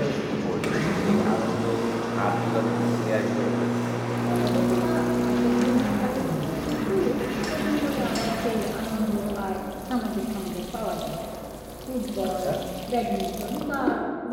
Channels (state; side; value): identical; both; correlation 1.00